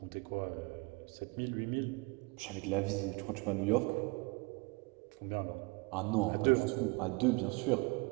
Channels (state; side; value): quieter; left; 28.0 dB